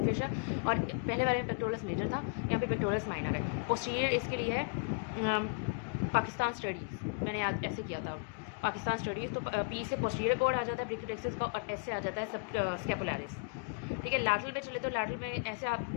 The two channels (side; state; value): right; quieter; 31.7 dB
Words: फेशा। और पहले वाले में पेक्टोरस मेजर था, यहाँ पे पेक्टोरस माइनर है। पोस्टीरियर इसके लिए है पाकिस्तान स्टडीज़, मैंने याद ऐसे किया था पाकिस्तान स्टडीज़। तो पी से पोस्टीरियर कोड आ जाता है ब्रेकियल प्लेक्सस का, और एस से आ जाता है सब स्कैपुलैरिस, ठीक है। लैटरल पे चले तो लैटरल में ऐसे आप